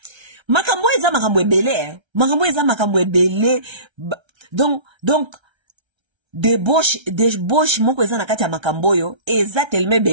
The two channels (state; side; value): late; left; 1.3 ms